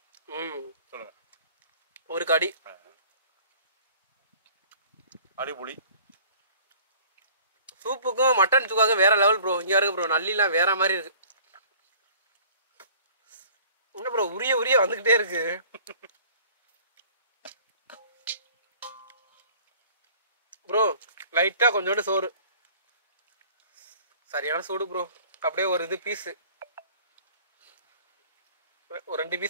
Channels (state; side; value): inverted; both; correlation -0.50